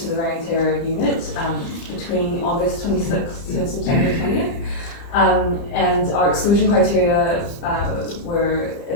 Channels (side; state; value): right; late; 30 ms